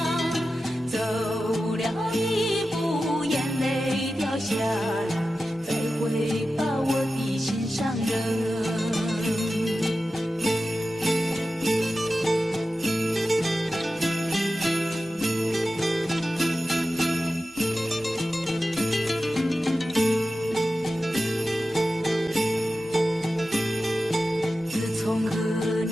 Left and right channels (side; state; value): both; normal; correlation 0.93